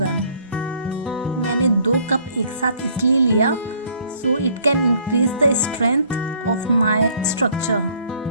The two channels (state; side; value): inverted; both; correlation -0.60